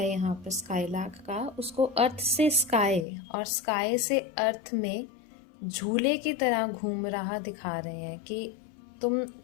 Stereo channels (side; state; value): right; drops out; at 3.1 s